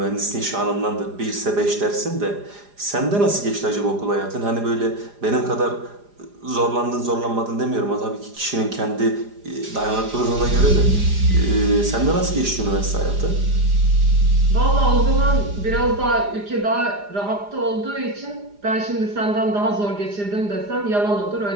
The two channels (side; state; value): left; late; 4.9 ms